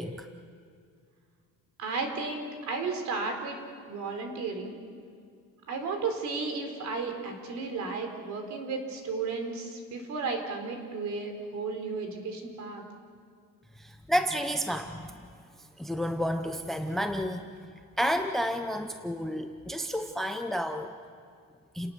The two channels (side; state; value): both; normal; correlation 0.52